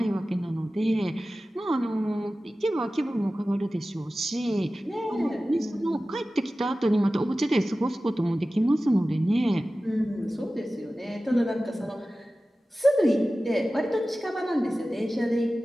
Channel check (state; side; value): normal; both; correlation 0.96